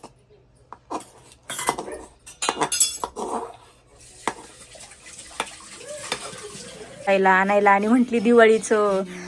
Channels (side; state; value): both; identical; correlation 1.00